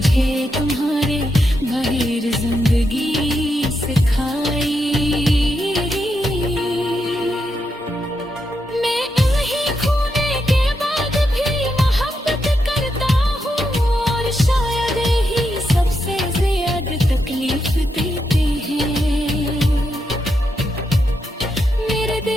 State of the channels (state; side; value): normal; both; correlation 0.83